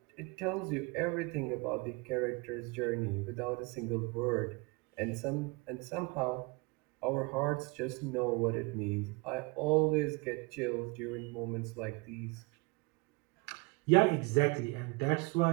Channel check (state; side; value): quieter; left; 27.4 dB